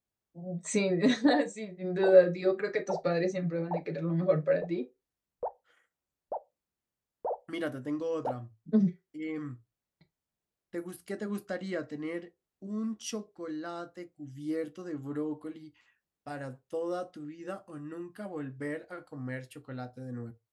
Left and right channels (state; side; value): identical; both; correlation 1.00